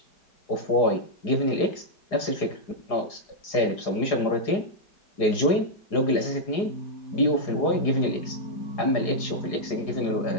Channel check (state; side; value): late; right; 4.9 ms